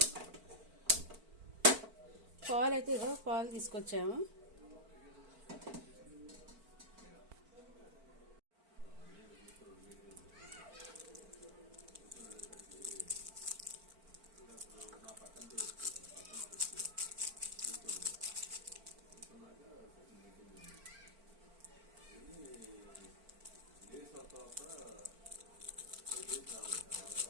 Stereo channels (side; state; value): left; late; 4.5 ms